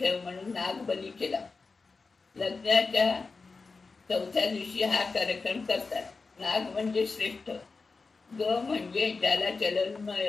म्हणून नागबली केला. लग्नाच्या 4थ्या दिवशी हा कार्यक्रम करतात. नाग म्हणजे श्रेष्ठ, ग म्हणजे ज्याला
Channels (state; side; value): quieter; right; 4.2 dB